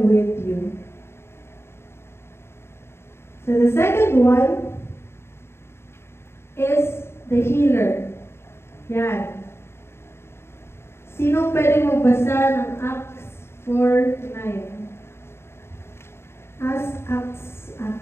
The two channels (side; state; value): right; late; 0.12 ms